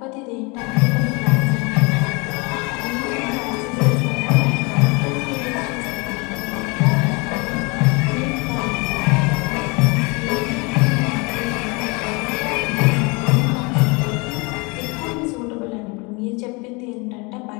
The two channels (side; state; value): right; quieter; 28.7 dB